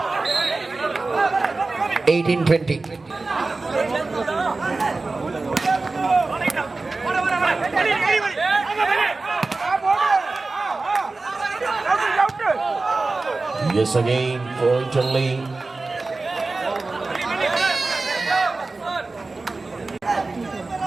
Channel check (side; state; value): left; quieter; 3.5 dB